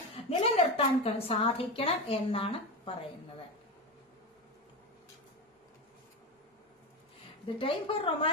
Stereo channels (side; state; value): both; normal; correlation 0.18